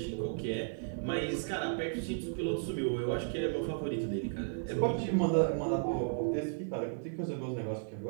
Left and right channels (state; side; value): silent; left; digital silence